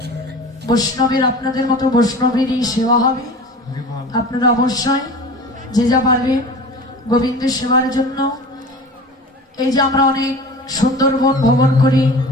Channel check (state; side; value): normal; both; correlation 0.37